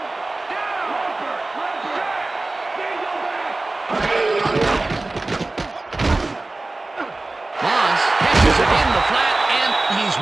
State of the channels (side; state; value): left; quieter; 3.0 dB